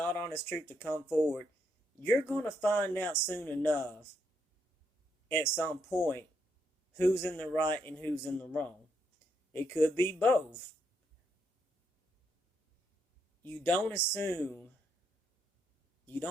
honest truth to come forward, you're going to find out soon enough at some point who's in the right and who's in the wrong. It could be both. You don't assume, you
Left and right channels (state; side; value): normal; both; correlation 0.77